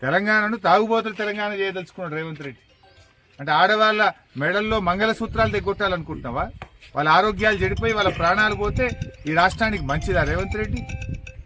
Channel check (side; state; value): both; identical; correlation 1.00